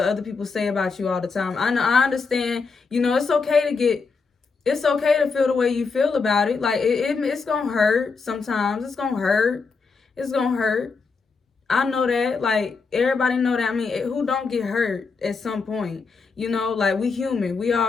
other people say about you all the time. I understand, it's okay to feel the way you feel about it. Like, it's gonna hurt sometimes. It's gonna hurt. I know that. Like, everybody know that. I mean, who don't get hurt at some point? Like, we human. We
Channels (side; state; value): right; quieter; 4.7 dB